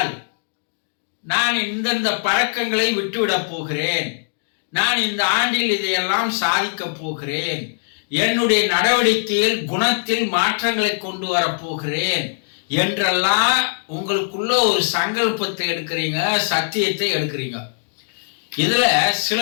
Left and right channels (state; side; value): silent; right; digital silence